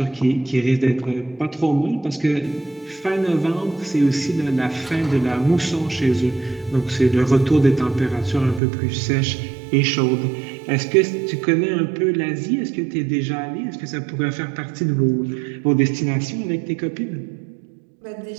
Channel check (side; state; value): left; drops out; at 8.6 s